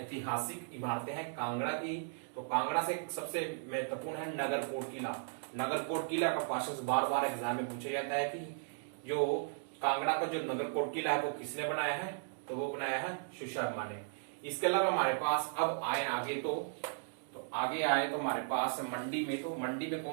इमारतें हैं कांगड़ा की। तो कांगड़ा से सबसे महत्वपूर्ण है नगरकोट किला। नगरकोट किला का क्वेश्चन बार बार एग्जाम में पूछा जाता है कि जो कांगड़ा का जो नगरकोट किला है वो किसने बनाया है, तो वो बनाया है सुशर्मा ने। इसके अलावा हमारे पास अब आए आगे तो आगे आए तो हमारे पास मंडी में, तो मंडी में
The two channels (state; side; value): silent; left; digital silence